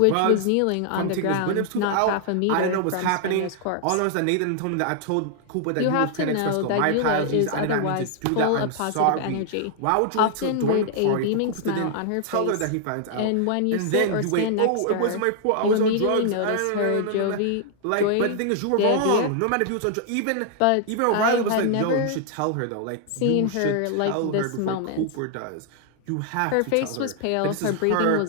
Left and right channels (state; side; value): different; both; correlation 0.00